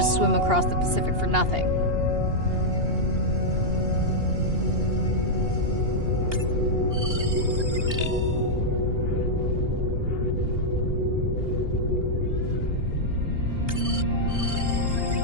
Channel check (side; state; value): left; late; 2.8 ms